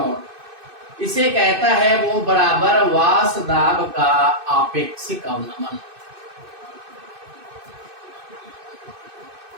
इसे कहता है वो बराबर वाष्प दाब का आपेक्षिक अवनमन।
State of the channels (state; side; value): late; left; 2.6 ms